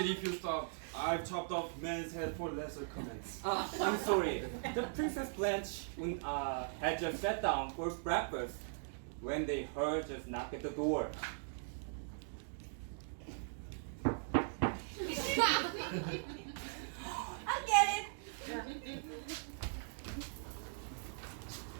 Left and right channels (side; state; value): left; silent; digital silence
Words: if you stopped. I've chopped off men's head for lesser comments. I'm sorry. The Princess Blanche had just sat down for breakfast when they heard just knock at the door. I'll get it.